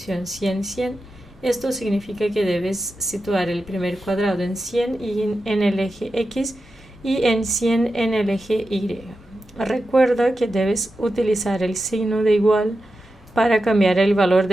100-100. Esto significa que debes situar el primer cuadrado en 100 y en el eje X y en 100 en el eje Y. Recuerda que debes utilizar el signo de igual para cambiar el valor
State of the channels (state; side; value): normal; both; correlation 0.91